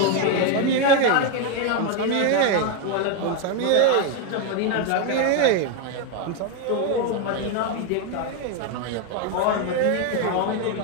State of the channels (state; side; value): different; both; correlation 0.02